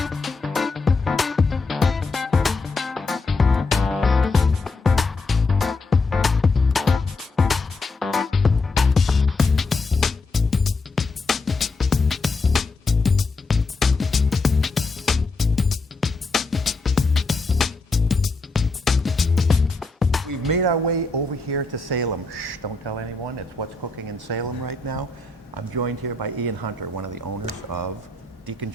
Made our way over here to Salem. Shh, don't tell anyone. It's What's Cooking in Salem right now. I'm joined here by Ian Hunter, one of the owners of Deacon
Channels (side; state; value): right; quieter; 3.6 dB